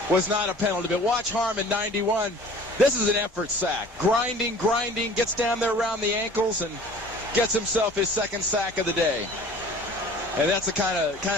was not a penalty. But watch Harmon, 91. This is an effort sack. Grinding, gets down there around the ankles, and gets himself his second sack of the day. And that's the kind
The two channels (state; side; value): normal; both; correlation 0.46